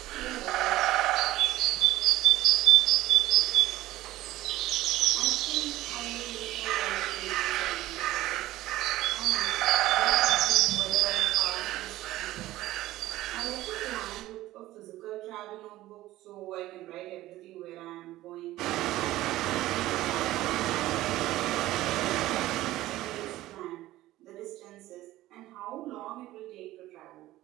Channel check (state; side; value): quieter; left; 16.0 dB